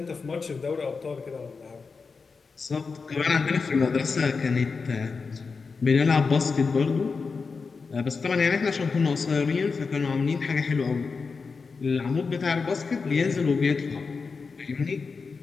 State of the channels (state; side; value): quieter; right; 4.8 dB